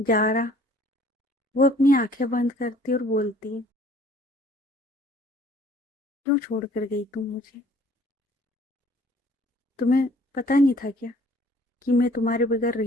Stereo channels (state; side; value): normal; both; correlation 0.56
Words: वो अपनी आंखें बंद करती और बोलती है, क्यों छोड़ कर गई तुम मुझे? तुम्हें पता नहीं था क्या कि मैं तुम्हारे बगैर